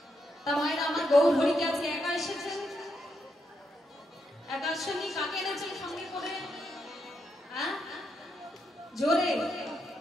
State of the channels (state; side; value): normal; both; correlation 0.81